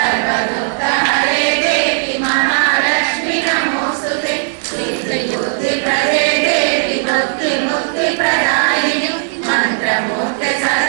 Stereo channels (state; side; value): silent; left; digital silence